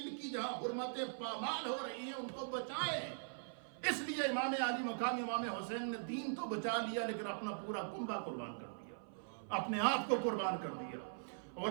کی جہاں حرمتیں پامال ہو رہی ہیں ان کو بچائیں. اس لیے امام علی مقام امام حسین نے دین تو بچا لیا، لیکن اپنا پورا کنبہ قربان کر دیا، اپنے آپ کو قربان کر دیا،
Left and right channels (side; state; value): left; silent; 50 dB below the other